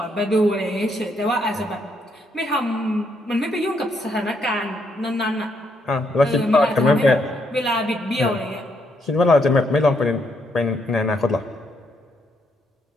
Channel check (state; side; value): normal; both; correlation 0.74